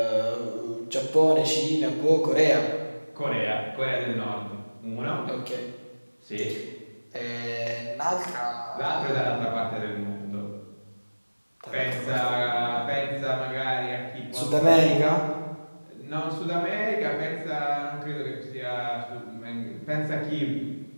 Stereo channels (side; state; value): both; inverted; correlation -1.00